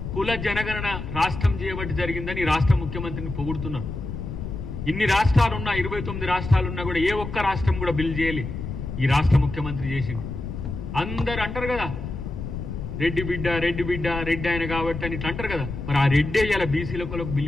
కుల జనగణన రాష్ట్రం చేయబట్టి జరిగిందని రాష్ట్ర ముఖ్యమంత్రిని పొగుడుతున్నారు. ఇన్ని రాష్ట్రాలున్నా, 29 రాష్ట్రాలున్నా కూడా ఏ ఒక్క రాష్ట్రం కూడా బిల్ చేయలే, ఈ రాష్ట్ర ముఖ్యమంత్రి చేసింది. అందరు అంటారు కదా రెడ్డి బిడ్డ, రెడ్డి బిడ్డ, రెడ్డి ఆయన కాబట్టి అని ఇట్లా అంటారు కదా. మరి ఆ రెడ్డే ఇలా బీసీలకు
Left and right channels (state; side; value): noise; left; rumble, 7 dB below the sound